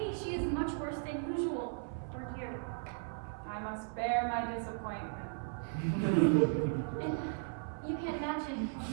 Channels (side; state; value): left; silent; 53 dB below the other